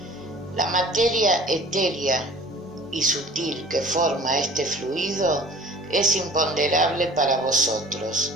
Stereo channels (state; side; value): normal; both; correlation 0.47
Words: La materia etérea y sutil que forma este fluido es imponderable para vosotros,